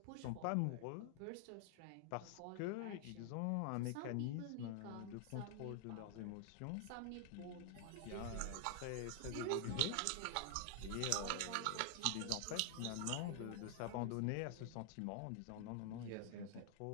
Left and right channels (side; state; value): both; different; correlation 0.00